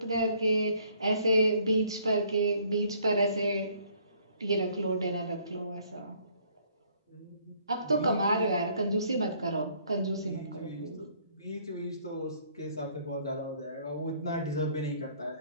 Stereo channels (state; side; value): inverted; both; correlation -0.62